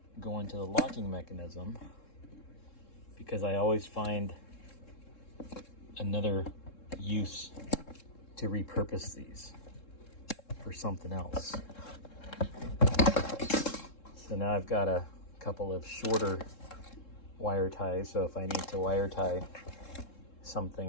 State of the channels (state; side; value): late; right; 3.7 ms